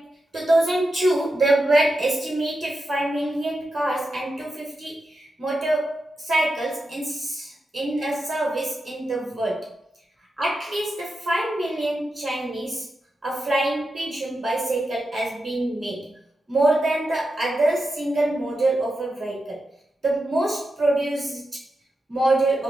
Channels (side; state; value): both; normal; correlation 0.89